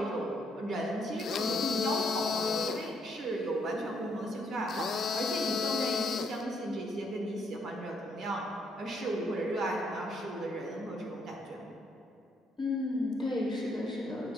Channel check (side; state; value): both; normal; correlation 0.71